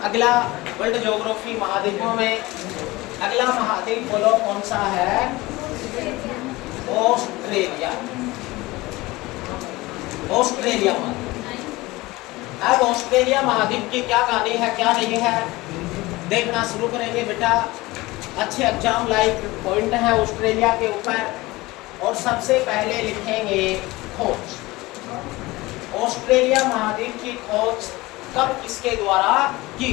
अगला वर्ल्ड ज्योग्राफी महाद्वीपों में अगला महाद्वीप बोलो कौन सा है? ऑस्ट्रेलिया। ऑस्ट्रेलिया महाद्वीप। अब ऑस्ट्रेलिया महाद्वीप की क्या कहानी है क्या नहीं है देखना शुरू करेंगे बेटा। अच्छे एग्जाम लाइक पॉइंट है ऑस्ट्रेलिया के ऊपर। और सबसे पहले लिखेंगे खोज। ऑस्ट्रेलिया महाद्वीप की खोज कब किसके द्वारा की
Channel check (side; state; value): right; quieter; 20.6 dB